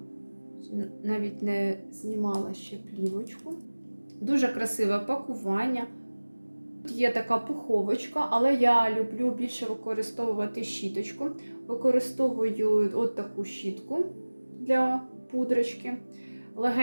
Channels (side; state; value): both; inverted; correlation -1.00